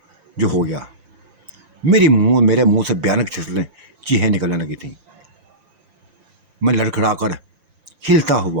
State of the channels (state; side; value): late; left; 5.9 ms